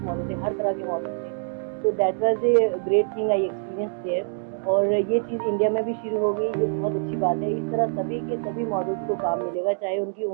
मॉडल थे, हर तरह के मॉडल थे। तो that was a great thing I experience there. और ये चीज़ इंडिया में भी शुरू हो गई, ये बहुत अच्छी बात है। इस तरह सभी के सभी मॉडल्स को काम मिलेगा, चाहे उनकी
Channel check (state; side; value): silent; left; digital silence